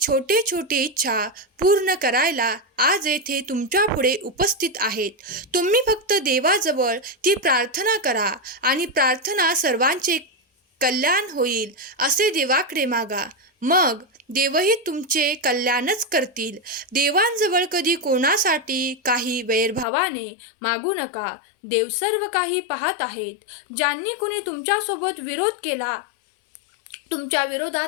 छोटे इच्छा पूर्ण करायला आज येथे तुमच्या पुढे उपस्थित आहेत. तुम्ही फक्त देवाजवळ ती प्रार्थना करा आणि प्रार्थना सर्वांचे कल्याण होईल असे देवाकडे मागा. मग देवही तुमचे कल्याणच करतील. देवांजवळ कधी कोणासाठी काही वैरभावाने मागू नका. देव सर्व काही पाहत आहेत. ज्यांनी कुणी तुमच्यासोबत विरोध केला, तुमच्या विरोधात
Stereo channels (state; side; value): drops out; right; at 19.9 s